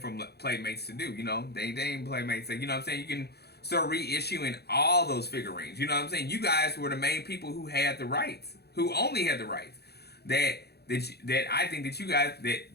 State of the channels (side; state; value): right; late; 0.47 ms